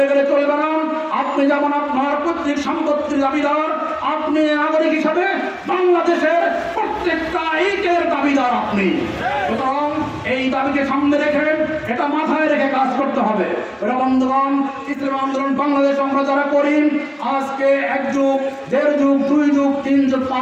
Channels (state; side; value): identical; both; correlation 1.00